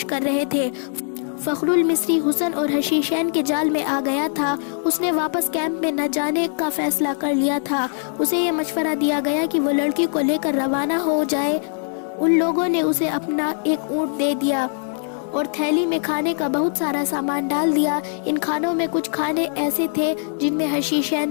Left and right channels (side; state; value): right; silent; 56 dB below the other